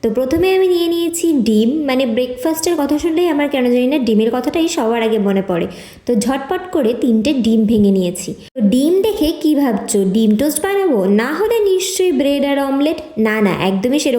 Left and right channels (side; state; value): both; identical; correlation 1.00